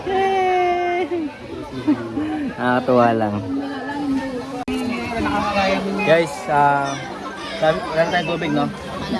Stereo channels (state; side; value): identical; both; correlation 1.00